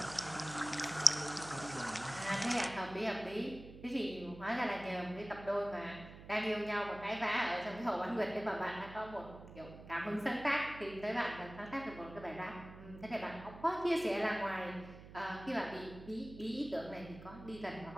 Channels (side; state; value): right; noise; hum, 15 dB below the sound